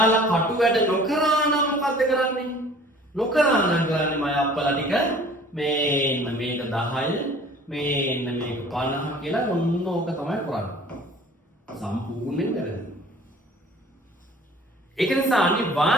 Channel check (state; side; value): normal; both; correlation 0.49